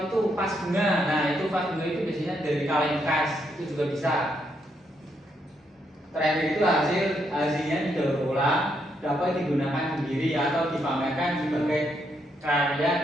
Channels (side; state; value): both; normal; correlation 0.77